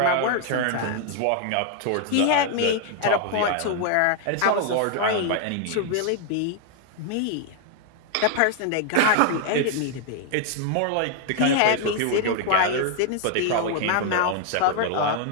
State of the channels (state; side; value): different; both; correlation 0.00